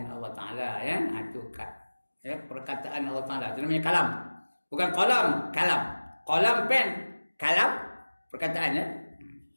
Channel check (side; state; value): both; inverted; correlation -1.00